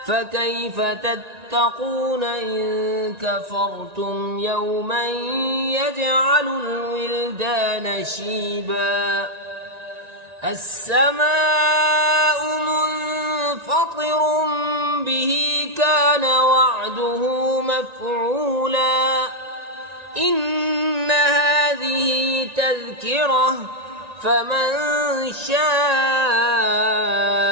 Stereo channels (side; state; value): left; late; 1.9 ms